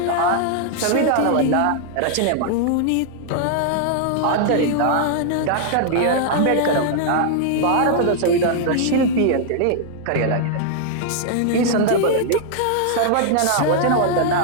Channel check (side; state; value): both; different; correlation -0.01